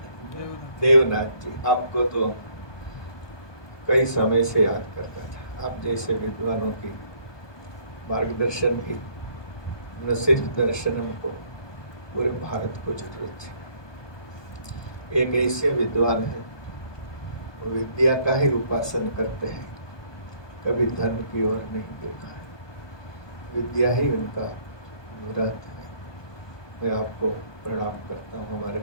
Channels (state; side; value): late; right; 1.2 ms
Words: देवनाथ जी, आपको तो कई समय से याद करता था। आप जैसे विद्वानों की मार्गदर्शन की न सिर्फ दर्शनम को, पूरे भारत को जरूरत थी। एक ऐसे विद्वान है, वो विद्या का ही उपासन करते हैं, कभी धन की ओर नहीं देखा है, विद्या ही उनका व्रत है। मैं आपको प्रणाम करता हूँ। हमारे